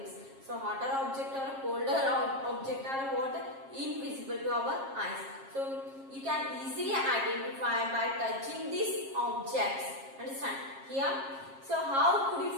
So hotter object or colder object are what? Invisible to our eyes. So you can easily identify by touching these objects. Understand? Here, so how could you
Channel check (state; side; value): late; left; 7.4 ms